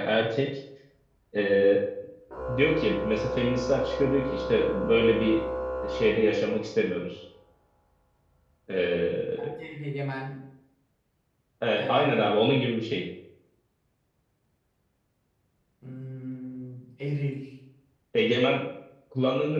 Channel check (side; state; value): both; identical; correlation 1.00